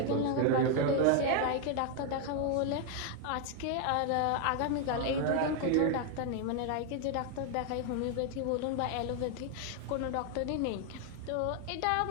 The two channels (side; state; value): both; different; correlation 0.00